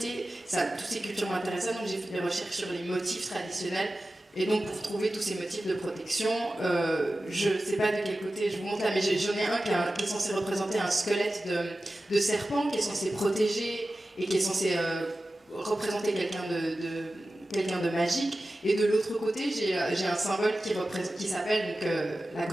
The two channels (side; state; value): both; normal; correlation 0.95